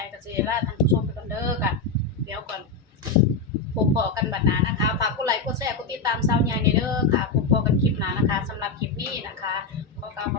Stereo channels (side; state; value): right; quieter; 4.0 dB